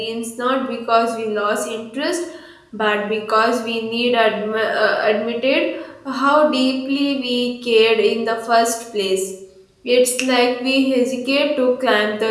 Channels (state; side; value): identical; both; correlation 1.00